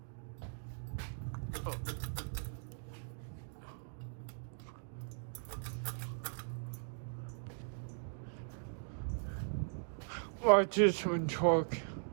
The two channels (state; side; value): silent; left; digital silence